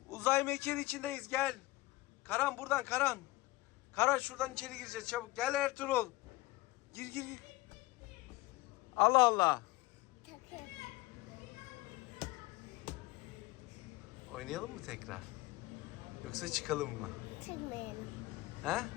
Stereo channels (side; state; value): right; quieter; 19.8 dB